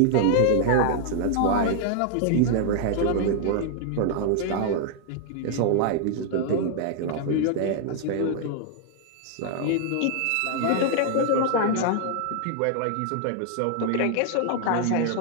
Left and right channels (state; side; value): different; both; correlation 0.00